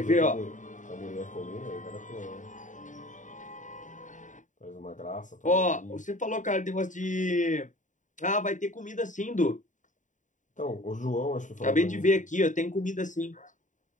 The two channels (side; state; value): right; late; 0.36 ms